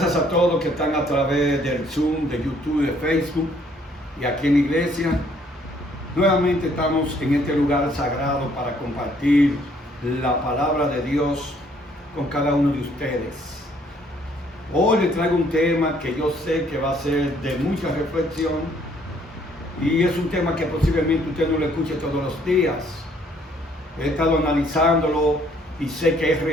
a todos que están a través del Zoom, de YouTube, de Facebook y aquí en la iglesia. Nuevamente estamos en este lugar sagrado para compartir la palabra de Dios con cada uno de ustedes. Hoy les traigo un tema que yo sé que va a ser de mucha reflexión y es un tema que posiblemente usted no lo escuche todos los días. He estado analizándolo y sé que es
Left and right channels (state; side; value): normal; both; correlation 0.64